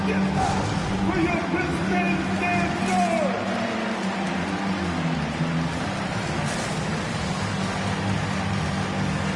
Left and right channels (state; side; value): identical; both; correlation 1.00